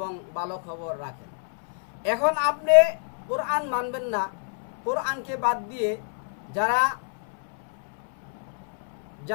ভালো খবর রাখেন। এখন আপনি কোরআন মানবেন না, কোরআনকে বাদ দিয়ে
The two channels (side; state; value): right; silent; 60 dB below the other